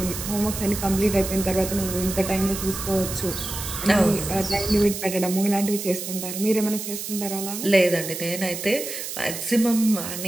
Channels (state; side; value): noise; right; hiss, 7 dB below the sound